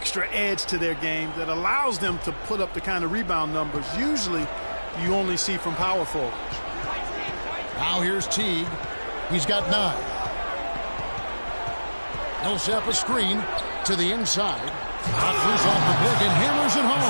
edge to their game that allows them to put up the kind of rebound numbers usually you only see from power forwards. Now here's Teague. He's got 9. Millsap a screen to the inside. Offers off the pick and hammers it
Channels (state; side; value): inverted; both; correlation -1.00